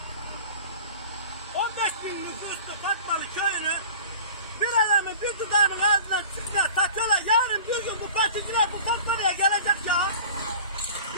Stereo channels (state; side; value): inverted; both; correlation -0.41